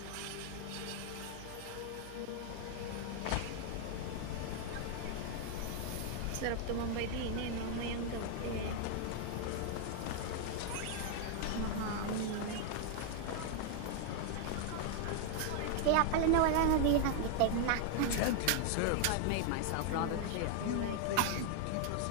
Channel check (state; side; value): different; both; correlation 0.00